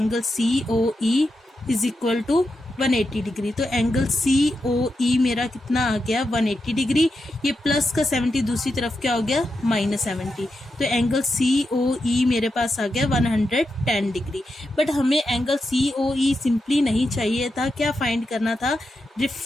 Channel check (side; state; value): both; normal; correlation 0.87